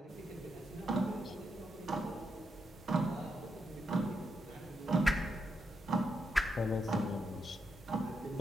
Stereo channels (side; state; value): both; normal; correlation 0.82